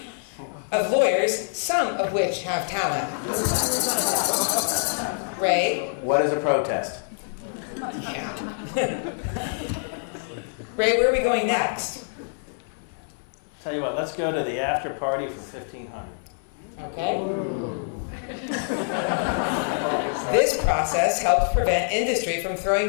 of lawyers, some of which have talent. Ray? What is a protest? Yeah. Ray, where are we going next? Tell you what, let's go to the after party for 1,500. Okay. This process helps prevent industry from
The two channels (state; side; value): silent; right; digital silence